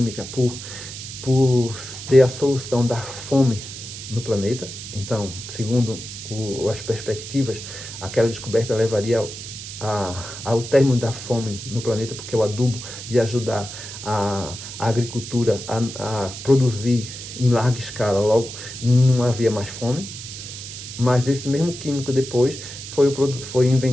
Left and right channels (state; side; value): noise; right; hiss, 11 dB below the sound